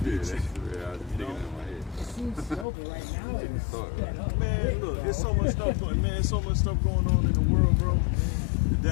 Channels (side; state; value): right; drops out; at 2.7 s